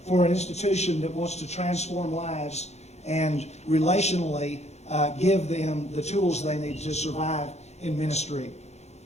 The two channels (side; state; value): right; late; 0.32 ms